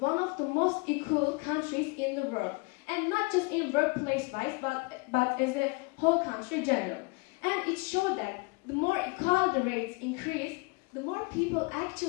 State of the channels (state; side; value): quieter; right; 28.6 dB